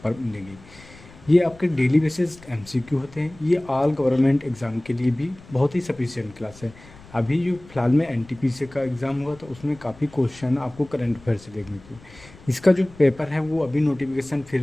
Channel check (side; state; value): left; noise; rumble, 22 dB below the sound